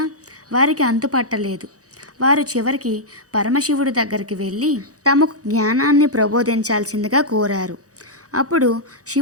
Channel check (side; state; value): left; late; 0.66 ms